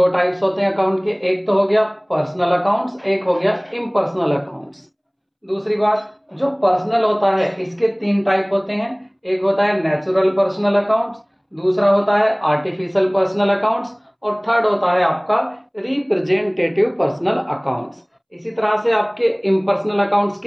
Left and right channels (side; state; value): both; identical; correlation 1.00